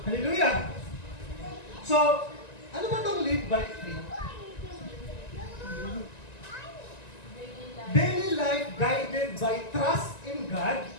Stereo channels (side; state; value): right; late; 1.9 ms